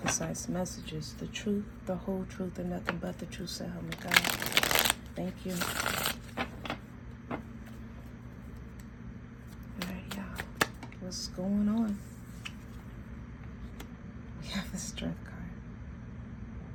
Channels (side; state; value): both; identical; correlation 1.00